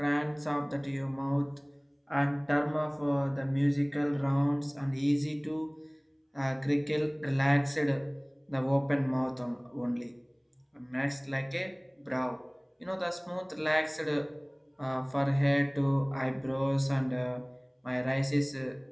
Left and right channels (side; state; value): both; identical; correlation 1.00